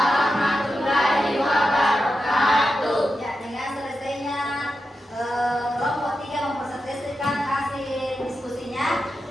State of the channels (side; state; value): both; normal; correlation 0.89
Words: wabarakatuh. Ya, dengan selesainya kelompok 3 mempresentasikan hasil diskusinya,